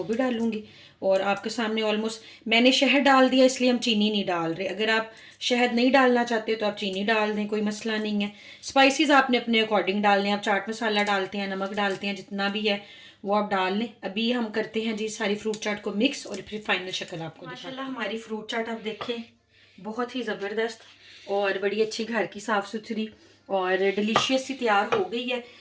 भी डालूंगी। और आपके सामने ऑलमोस्ट मैंने शहद डाल दिया, इसलिए हम चीनी नहीं डाल रहे। अगर आप शहद नहीं डालना चाहते तो आप चीनी डाल दें, कोई मसला नहीं है। स्पाइसेस आपने अपने अकॉर्डिंग डालने हैं। आप चाट मसाला डालते हैं, नमक डालते हैं, जितना भी है वो आप डाल लें। अभी हम करते हैं जी सारी फ्रूट चाट को मिक्स और फिर फाइनल शक्ल आपको। माशाल्लाह हमारी फ्रूट चाट आप देखें बहुत ही ज़बरदस्त और बड़ी अच्छी घर की साफ़ सुथरी और डिलीशियस सी तैयार हो गई है।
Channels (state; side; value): identical; both; correlation 1.00